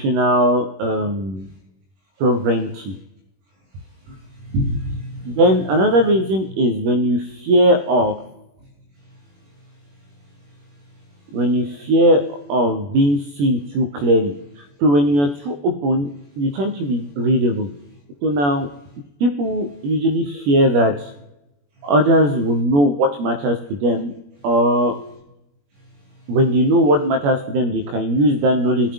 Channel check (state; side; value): late; left; 21 ms